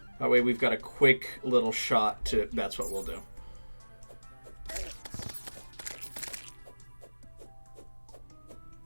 That way we've got a quick little shot to... That's what we'll do.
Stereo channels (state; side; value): inverted; both; correlation -1.00